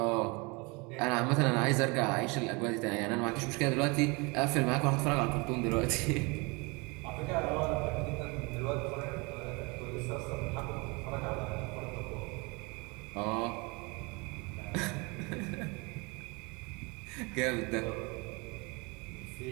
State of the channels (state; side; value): quieter; left; 28.0 dB